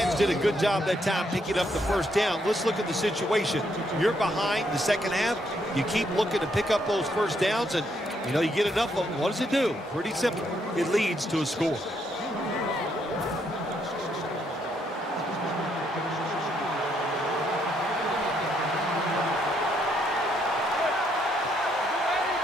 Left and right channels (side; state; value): both; normal; correlation 0.74